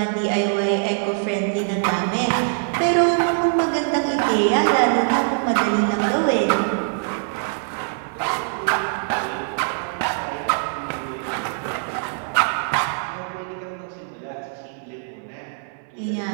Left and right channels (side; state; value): left; silent; 64 dB below the other